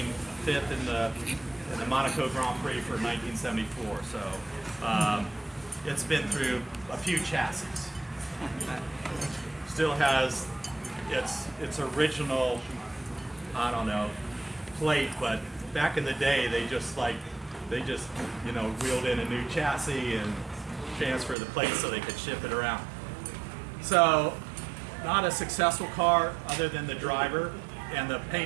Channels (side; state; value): left; drops out; at 21.4 s